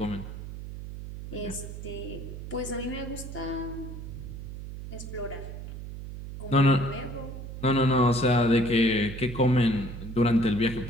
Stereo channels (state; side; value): noise; right; hum, 10 dB below the sound